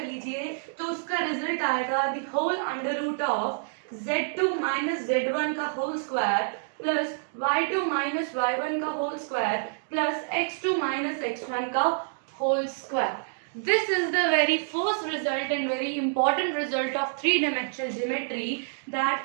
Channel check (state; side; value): silent; left; digital silence